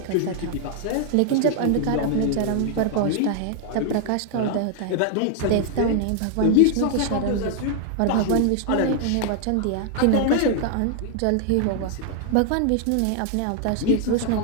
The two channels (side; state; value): both; different; correlation 0.00